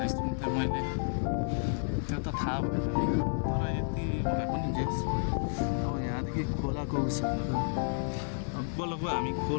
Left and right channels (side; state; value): right; silent; 57 dB below the other